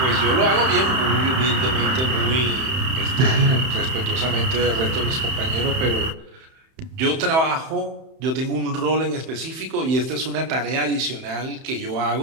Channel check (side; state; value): left; late; 31 ms